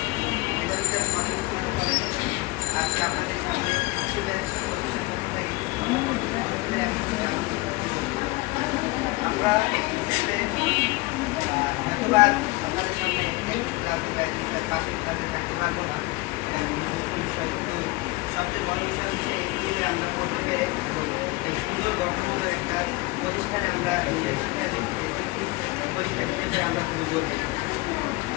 এটা হচ্ছে মানুষ মনে করে আজকে আপনাদের সামনে স্টুডেন্ট আমরা হয়তোবার আপনাদের সামনে পাঁচ মিনিট থাকতে পারবো না। কিন্তু সবচেয়ে বড় বিষয় হচ্ছে এই দিনে আমরা বলতে পেরে সুন্দর গঠনমূলক একটা প্রতিষ্ঠানে আমরা পরীক্ষা দিতে পেরে আমরা খুবই গর্বিত।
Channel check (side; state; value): right; quieter; 22.6 dB